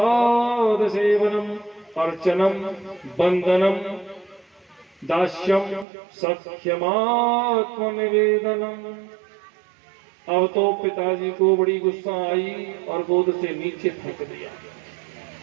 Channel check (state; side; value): drops out; left; at 5.9 s